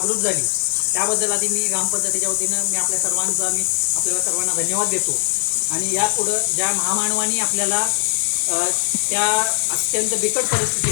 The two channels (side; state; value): right; silent; digital silence